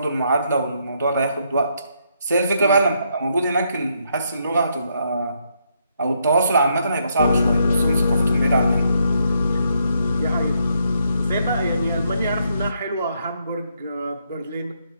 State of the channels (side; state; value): both; inverted; correlation -0.75